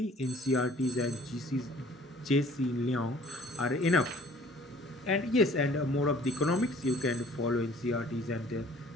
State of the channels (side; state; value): both; normal; correlation 0.53